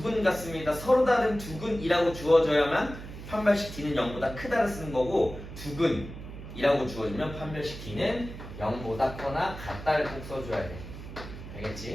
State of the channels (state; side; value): noise; right; hum, 12 dB below the sound